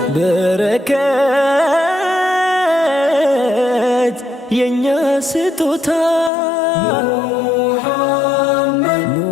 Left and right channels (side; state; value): right; drops out; at 6.3 s